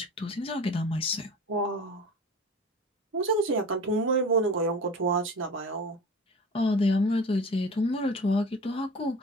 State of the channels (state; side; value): normal; both; correlation 0.36